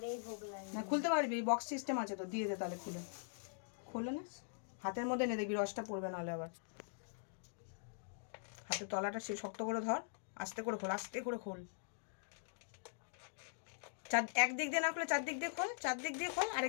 ভোগ লাগে। না, খুলতে পারবি, বক্স সিস্টেম আছে তো, দিয়ে দে তাহলে খুলে। খোলে না, হাতের মধ্যে নে, দেখবি রসটা পড়বে, নাহলে আবার। হাতের তলাটা সে শক্ত করে ধর, আস্তে করে খোল, আস্তে করে খোল। একদিক দিয়ে না খুলে চারদিক দিয়ে খোল, চারদিক দিয়ে খোল,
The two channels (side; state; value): right; silent; digital silence